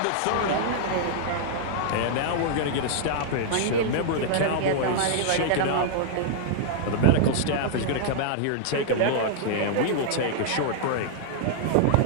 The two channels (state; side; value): different; both; correlation -0.01